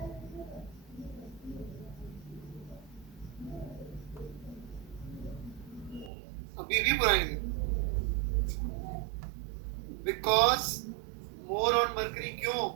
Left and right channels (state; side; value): drops out; left; at 6.1 s